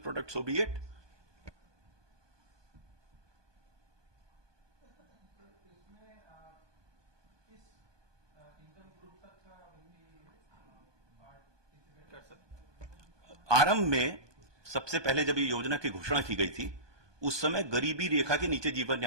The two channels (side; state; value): left; late; 1.2 ms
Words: so be it. आरंभ में सबसे पहले जब ये योजना की घोषणा की गई थी, उस समय गरीबी रेखा के नीचे जीवन